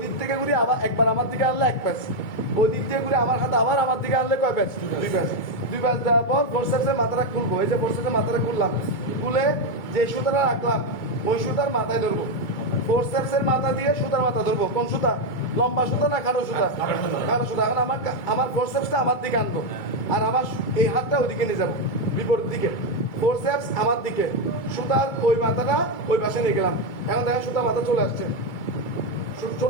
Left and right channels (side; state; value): right; late; 2.3 ms